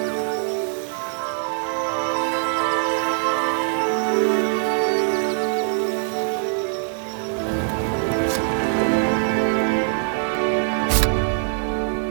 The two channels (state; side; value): silent; left; digital silence